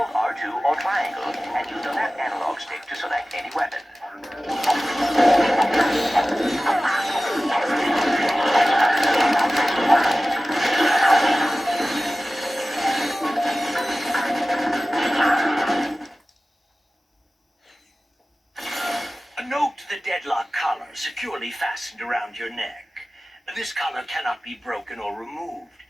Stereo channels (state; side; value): normal; both; correlation 0.96